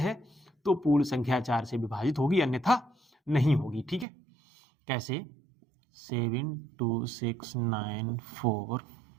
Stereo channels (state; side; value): drops out; left; at 4.0 s